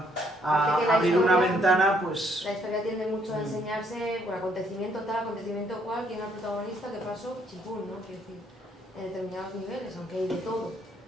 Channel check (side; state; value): both; normal; correlation 0.68